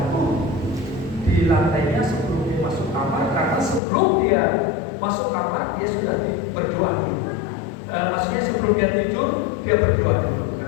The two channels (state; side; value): drops out; right; at 3.8 s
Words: di lantainya sebelum dia masuk kamar, karena sebelum dia masuk kamar dia sudah berdoa dulu. Maksudnya sebelum dia tidur dia berdoa dulu,